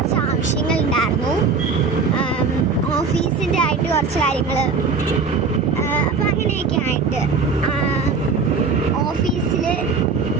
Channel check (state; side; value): quieter; left; 4.8 dB